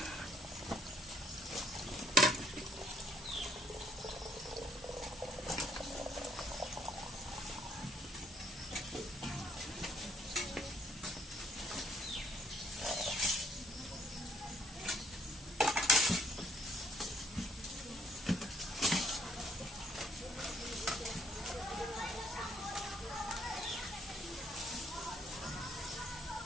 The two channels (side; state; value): both; normal; correlation 0.66